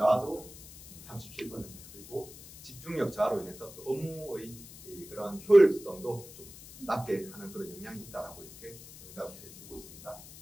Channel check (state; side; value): noise; left; hiss, 17 dB below the sound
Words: 37%, 그리고 집중력 저하로 인해서 또 업무의 그런 효율성도 좀 낮게 하는 그런 영향이 있다라고 이렇게 응답을 해주고 있습니다.